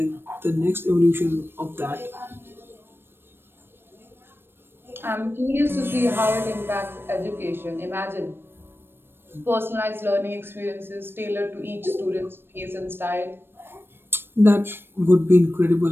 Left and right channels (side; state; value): left; late; 0.10 ms